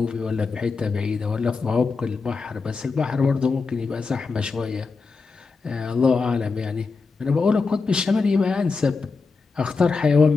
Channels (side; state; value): right; quieter; 4.5 dB